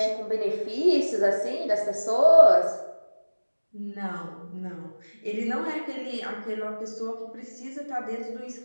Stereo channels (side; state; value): both; inverted; correlation -1.00